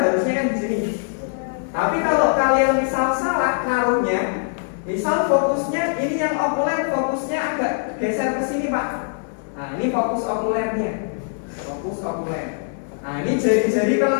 kan di sini. Tapi kalau kalian misal salah naruhnya, misal fokusnya ini yang okuler fokusnya agak geser ke sini Pak. Nah ini fokus okulernya, fokus okuler. Nah ini jari-jari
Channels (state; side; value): silent; right; 64 dB below the other